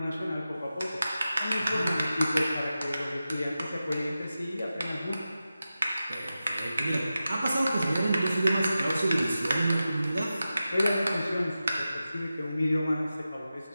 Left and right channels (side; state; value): both; inverted; correlation -0.92